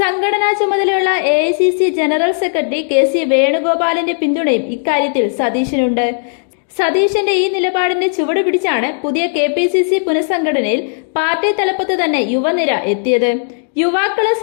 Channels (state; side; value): silent; right; digital silence